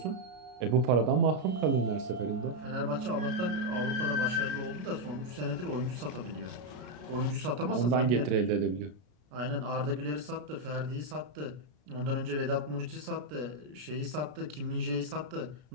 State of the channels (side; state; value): left; late; 33 ms